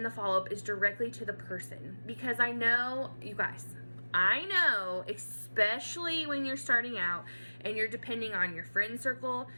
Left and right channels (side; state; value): both; inverted; correlation -1.00